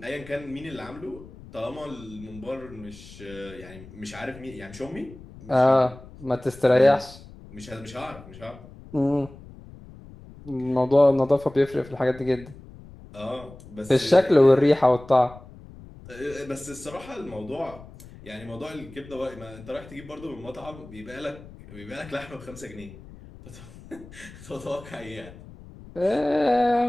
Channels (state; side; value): noise; left; rumble, 18 dB below the sound